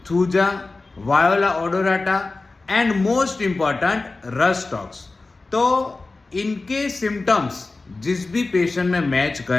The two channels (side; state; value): right; quieter; 3.5 dB